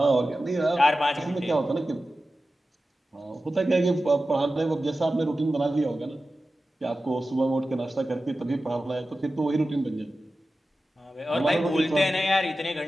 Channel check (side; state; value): both; normal; correlation 0.94